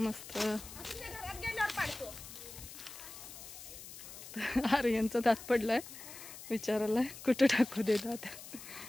मस्त. आर्यनचा दात पडलाय, विचारायला कुठं टाकू दे दात.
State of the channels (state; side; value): noise; left; hiss, 13 dB below the sound